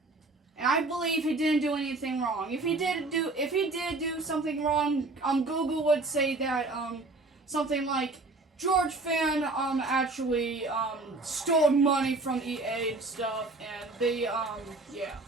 And I believe he didn't do anything wrong. If he did do something wrong, Google would say that something like George Fan actually stole money from EA and stuff, and they yeah.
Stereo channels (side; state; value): left; quieter; 3.2 dB